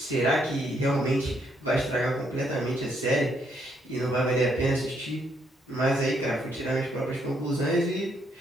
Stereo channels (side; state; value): both; normal; correlation 0.73